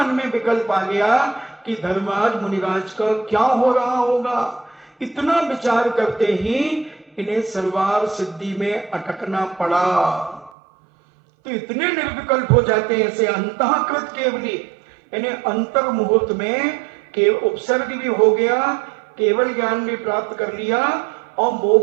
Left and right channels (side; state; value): left; drops out; at 10.5 s